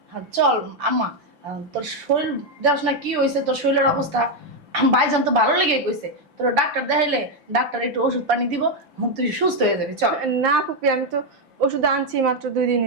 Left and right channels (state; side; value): late; left; 5.9 ms